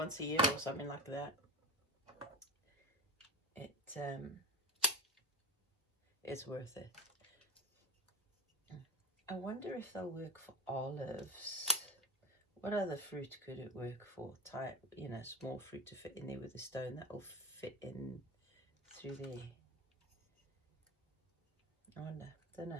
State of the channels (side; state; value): both; normal; correlation 0.17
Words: a year or something like that, it's worth it. I wonder if they'll work for olives. What other fruit could it work for? Small fruit to fit in there with a stone that will fit in through there. I wonder, don't